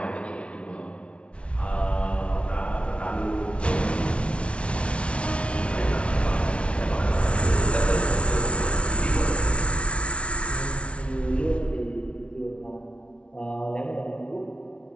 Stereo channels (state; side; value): late; right; 0.060 ms